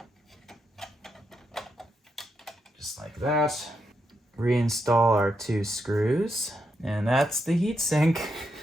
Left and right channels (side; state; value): both; normal; correlation 0.82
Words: Just like that. Reinstall our 2 screws. And that's the heatsink.